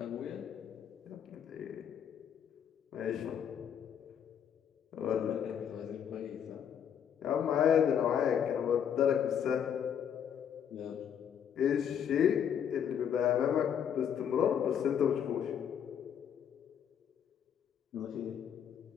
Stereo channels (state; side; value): quieter; right; 8.6 dB